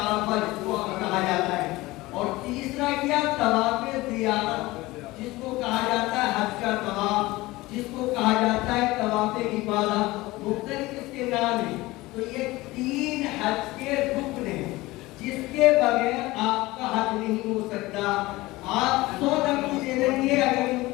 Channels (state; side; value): quieter; right; 19.8 dB